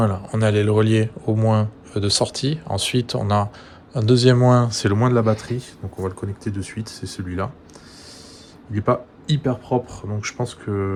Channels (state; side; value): identical; both; correlation 1.00